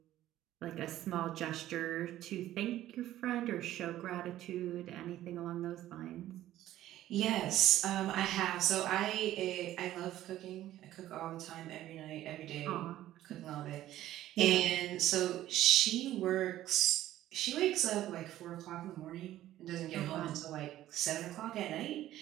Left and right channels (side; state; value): left; quieter; 13.7 dB